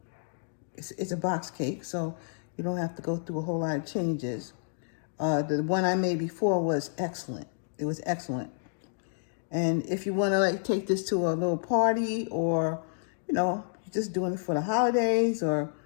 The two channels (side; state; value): right; silent; digital silence